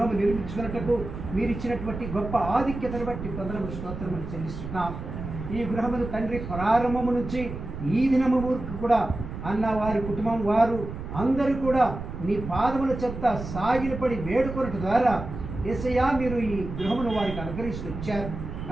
నిర్మించుకున్నట్టుకు మీరు ఇచ్చినటువంటి గొప్ప ఆధిక్యతను బట్టి వందనములు స్తోత్రములు చెల్లిస్తున్నాం. ఈ గృహమును తండ్రి ప్రారంభము నుంచి ఈ దినము వరకు కూడా అన్న వారి కుటుంబం వారు అందరూ కూడా నీ పాదముల చెత్త సాగిలపడి వేడుకొనట ద్వారా యేసయ్యా మీరు ఈ గృహమును వారికి అనుగ్రహిస్తూ వచ్చారు.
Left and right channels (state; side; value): noise; right; rumble, 8 dB below the sound